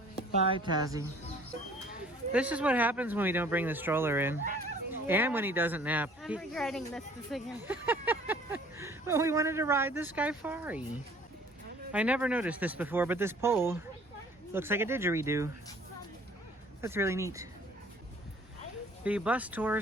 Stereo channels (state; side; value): normal; both; correlation 0.54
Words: Bye, Tassie. This is what happens when we don't bring the stroller in. Yeah. And when he doesn't nap. I'm regretting this decision. Well, we wanted to ride the Skyfari. I never noticed this before, but this pole looks like a didgeridoo. That's really neat. The bus